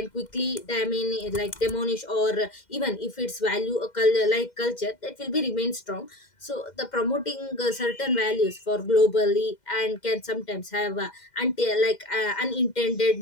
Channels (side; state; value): right; late; 2.1 ms